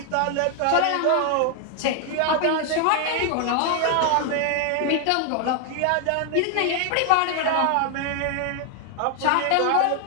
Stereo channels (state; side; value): different; both; correlation 0.00